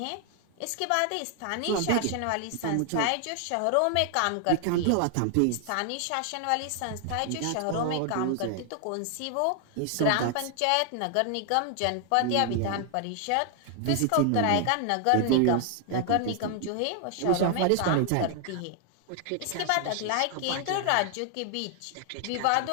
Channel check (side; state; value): both; different; correlation 0.00